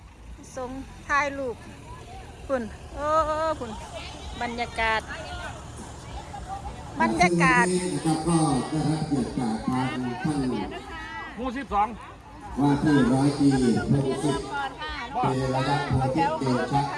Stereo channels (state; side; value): identical; both; correlation 1.00